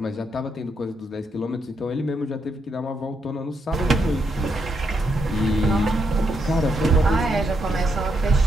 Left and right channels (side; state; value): both; normal; correlation 0.80